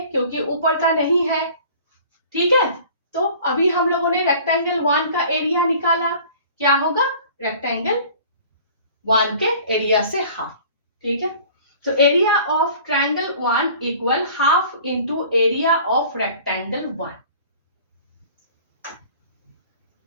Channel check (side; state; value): both; inverted; correlation -0.47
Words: क्योंकि ऊपर का नहीं है। ठीक है, तो अभी हम लोगों ने रेक्टेंगल 1 का एरिया निकाला, क्या होगा, रेक्टेंगल 1 के एरिया से हाफ। ठीक है, तो area of triangle 1 equal half into area of rectangle 1,